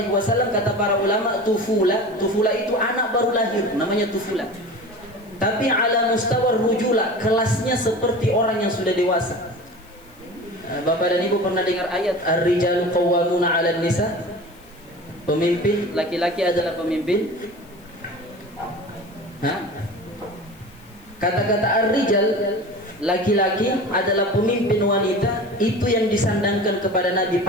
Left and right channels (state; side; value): noise; left; hiss, 28 dB below the sound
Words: wasallam kata para ulama, tufula itu anak baru lahir, namanya tufula. Tapi ala mustawar rujula, kelasnya seperti orang yang sudah dewasa. Bapak dan Ibu pernah dengar ayat ar-rijalu qawwamuna 'alan nisa? Pemimpin laki-laki adalah pemimpin. Kata-kata ar-rijal, laki-laki adalah pemimpin wanita, itu yang disandangkan kepada Nabi,